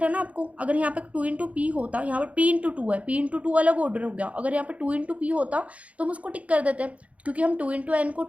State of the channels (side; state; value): left; late; 0.066 ms